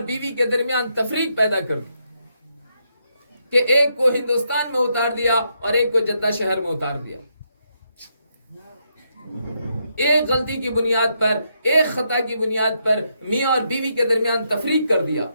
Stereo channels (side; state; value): both; inverted; correlation -0.78